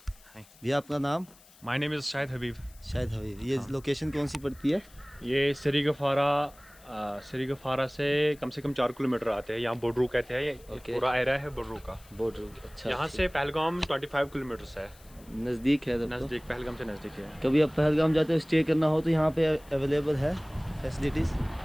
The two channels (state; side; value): noise; left; hiss, 25 dB below the sound